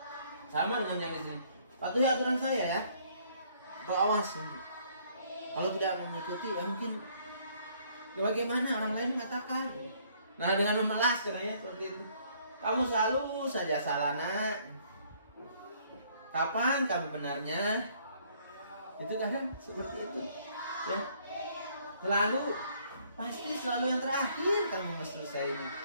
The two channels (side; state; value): both; inverted; correlation -0.63